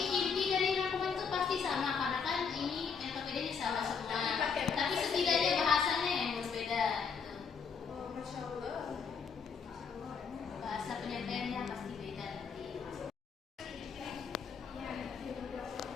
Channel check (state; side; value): quieter; right; 6.0 dB